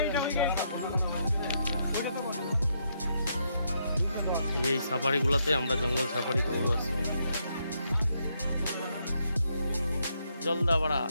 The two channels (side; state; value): both; inverted; correlation -0.77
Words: এই সাফারিগুলোতে আমরা জঙ্গল সাফারি করবো আজকে। জলদাপাড়া